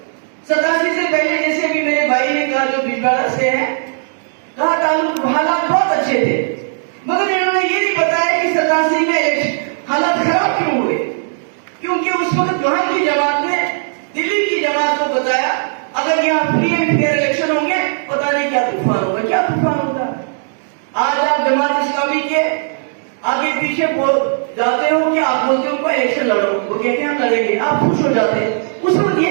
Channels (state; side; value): silent; left; digital silence